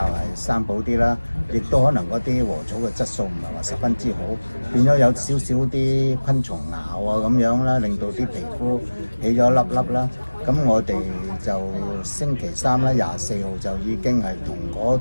生保啲啦，亦都可能嗰啲禾草嘅質素唔係話十分之好，變咗有少少啲昆蟲咬啊咁樣啦，令到啲皮膚起咗粒粒啦。咁我哋就星期3啦，24號就已經係同嗰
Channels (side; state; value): both; inverted; correlation -1.00